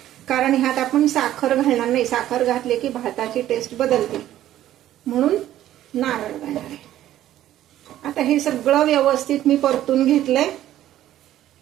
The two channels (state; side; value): quieter; left; 12.9 dB